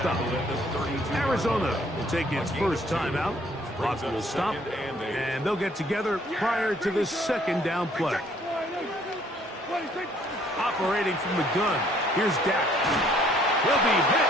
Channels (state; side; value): normal; both; correlation 0.62